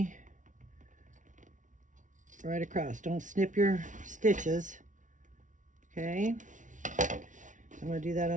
right across. Don't snip your stitches. Okay, so I'm going to do that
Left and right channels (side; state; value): left; late; 0.37 ms